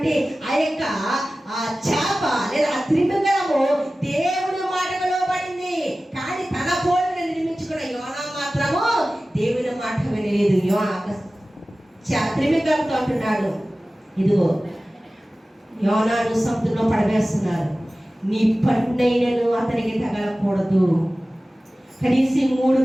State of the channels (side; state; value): both; normal; correlation 0.96